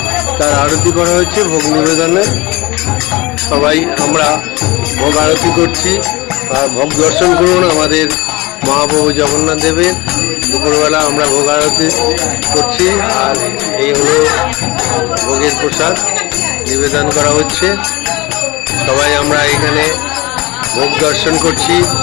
তার আরতি করা হয়েছে। ভোগ নিবেদনে সবাই আমরা ভোগ আরতি করছি। আর ভোগ দর্শন করুন আমাদের মহাপ্রভু জগন্নাথ দেবের। দুপুরবেলা আমরা ভোগ আরতি করছি, আর এই হলো ভোগের প্রসাদ নিবেদন করা হচ্ছে। সবাই আমরা এখানে ভোগ দর্শন করছি।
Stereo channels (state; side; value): quieter; right; 22.3 dB